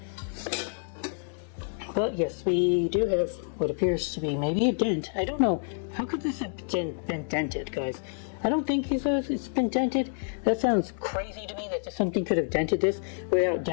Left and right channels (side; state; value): right; silent; 59 dB below the other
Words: But yes, we do have what appears to be maybe a dent. I don't know. How could this have been dented, guys? I don't think it's been dented. That sounds crazy to me that something could have dented this without